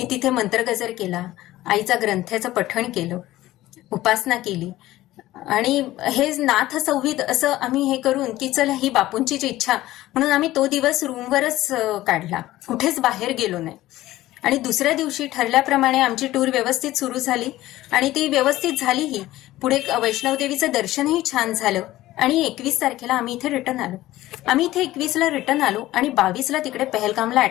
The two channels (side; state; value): right; quieter; 16.0 dB